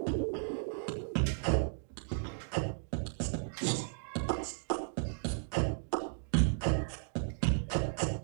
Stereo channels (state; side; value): silent; left; digital silence